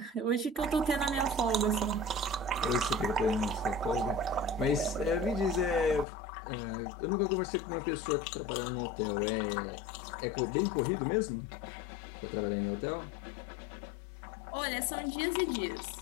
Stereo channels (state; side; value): drops out; right; at 6.1 s